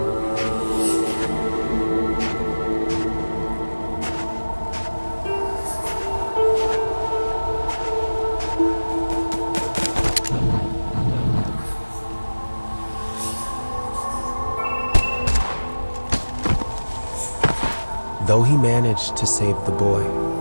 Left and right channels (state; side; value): inverted; both; correlation -1.00